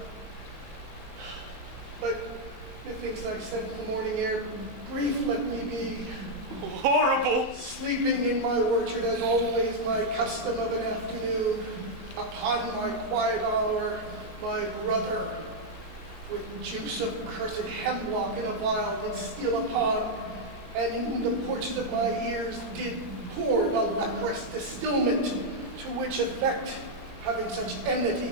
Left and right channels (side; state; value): left; late; 3.3 ms